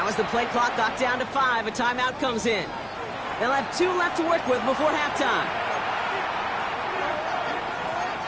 as the play clock got down to 5, a timeout comes in. They'll have 2 left to work with before halftime.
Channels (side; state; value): both; identical; correlation 1.00